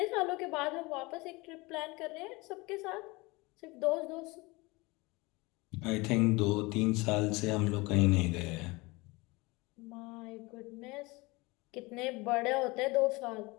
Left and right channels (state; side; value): quieter; right; 24.1 dB